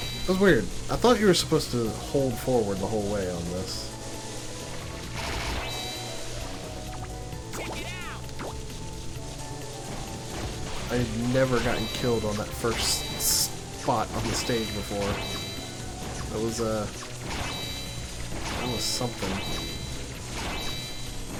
That's weird. I thought you were supposed to hold forward the whole way on this. I had never gotten killed on that first spot on the stage before. That was something.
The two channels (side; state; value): both; identical; correlation 1.00